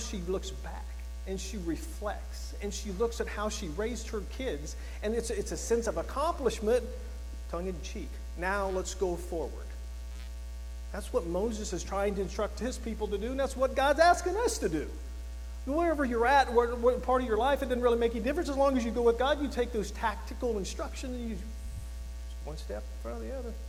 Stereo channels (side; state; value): both; identical; correlation 1.00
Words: looks back and she reflects and she looks at how she raised her kids, and it's a sense of accomplishment, tongue in cheek. Now let's go forward. That's what Moses is trying to instruct his people to do, and that's what God's asking us to do. Wherever you're at, what part of your life, it doesn't really make any difference. As long as you go with God, you take those tactical instructions and you one step in front of the other.